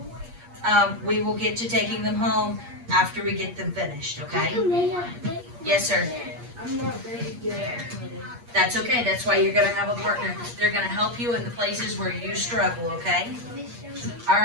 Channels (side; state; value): left; late; 8.5 ms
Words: We will get to taking them home after we get them finished, okay? Yes, sir. I'm not very good at it. That's okay. That's why you're gonna have a partner. They're gonna help you in the places where you struggle, okay? All